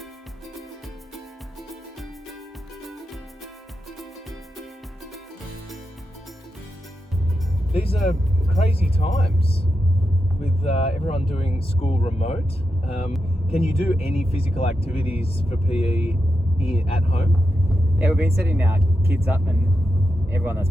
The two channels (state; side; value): normal; both; correlation 0.88